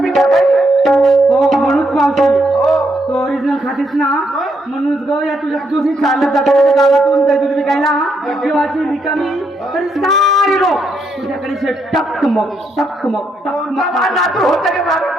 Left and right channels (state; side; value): normal; both; correlation 0.77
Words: पिकत आहे. हो म्हणूच मावशी. हो. तो ओरिजिनल खातेस ना म्हणूनच ग या तुझ्या तुझी चालत जातात गावातून काही दूध विकायला जीवाची रिकामी तरी सारे लोक तुझ्याकडे असे टकमक टकमक कोणता टकमक. मान नातू होतं की मागं